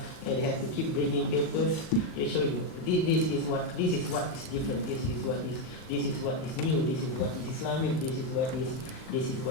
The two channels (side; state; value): right; late; 38 ms